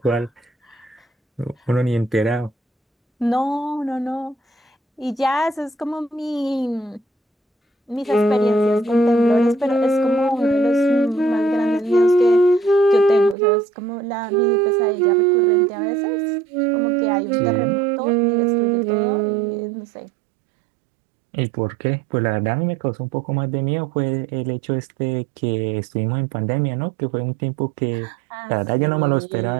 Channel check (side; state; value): left; drops out; at 13.4 s